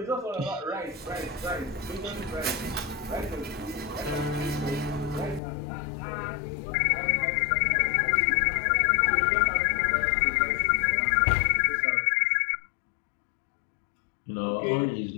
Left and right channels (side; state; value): right; drops out; at 5.4 s